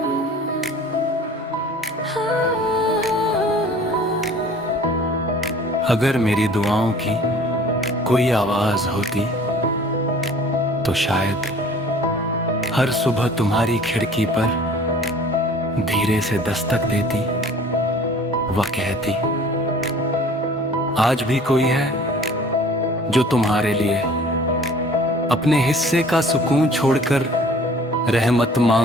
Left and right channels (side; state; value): both; normal; correlation 0.49